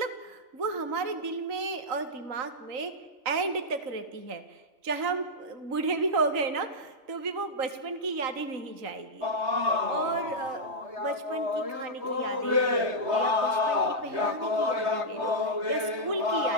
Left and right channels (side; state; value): left; late; 3.9 ms